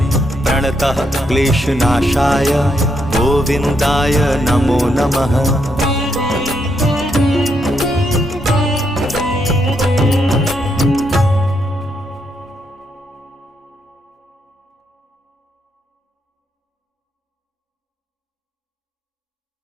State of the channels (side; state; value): both; normal; correlation 0.78